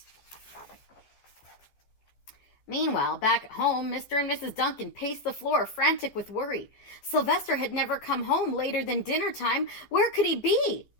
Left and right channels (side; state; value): right; late; 14 ms